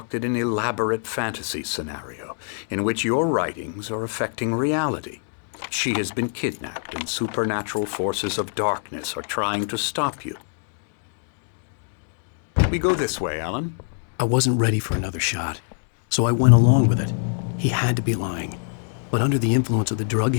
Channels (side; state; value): right; silent; digital silence